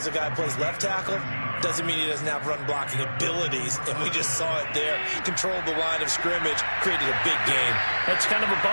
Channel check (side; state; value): both; inverted; correlation -1.00